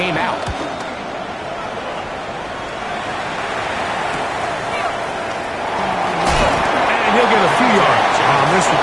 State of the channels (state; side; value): identical; both; correlation 1.00